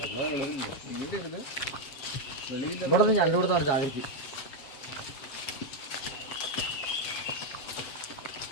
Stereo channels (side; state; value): right; late; 7.5 ms